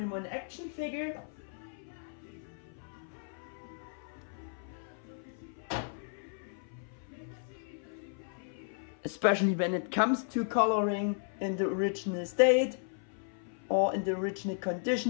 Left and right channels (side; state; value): right; silent; 55 dB below the other